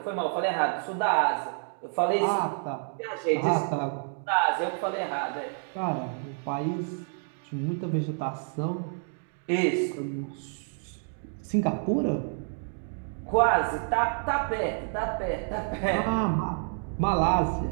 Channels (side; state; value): left; silent; 56 dB below the other